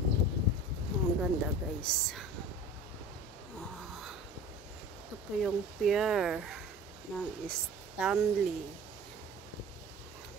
Ang ganda, guys. Ito po yung pier ng Stanley.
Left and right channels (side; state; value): both; normal; correlation 0.39